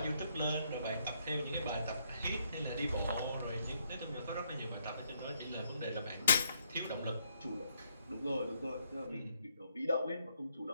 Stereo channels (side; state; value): both; inverted; correlation -0.73